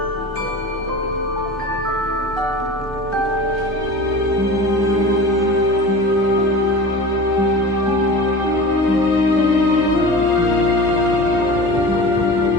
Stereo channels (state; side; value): normal; both; correlation 0.35